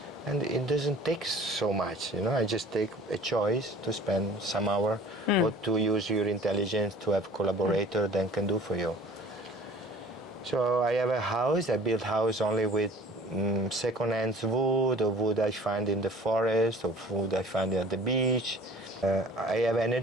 And it doesn't take so much, I just take a choice to spend some hour or to use your intelligence to have collaborator that can do for you. So I have a house. I build house only with second-hand wood or wood I find in the forest or wood I find at the beach. I have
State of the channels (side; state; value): both; normal; correlation 0.47